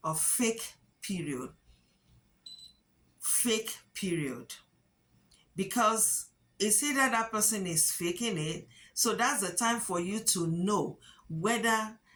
a fake period. Fake period. Because it's either that person is faking it, so that's the time for you to know whether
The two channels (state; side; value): identical; both; correlation 1.00